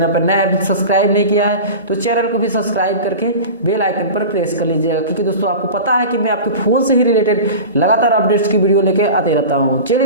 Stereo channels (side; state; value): both; inverted; correlation -0.32